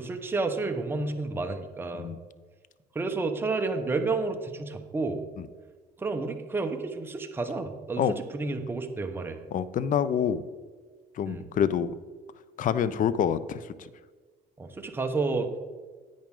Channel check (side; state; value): both; normal; correlation 0.50